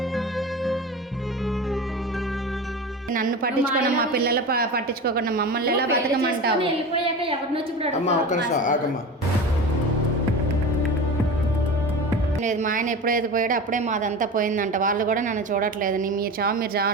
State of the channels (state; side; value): normal; both; correlation 0.30